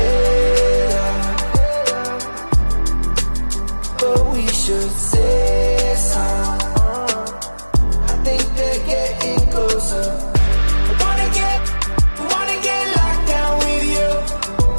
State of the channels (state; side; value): inverted; both; correlation -1.00